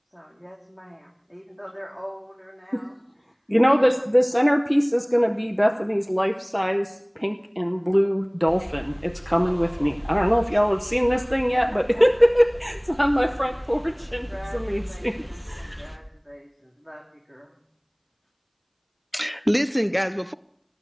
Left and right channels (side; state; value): both; identical; correlation 1.00